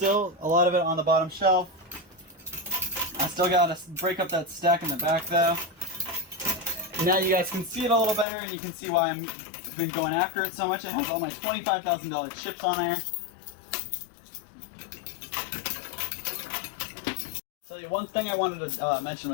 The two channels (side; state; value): right; drops out; at 8.2 s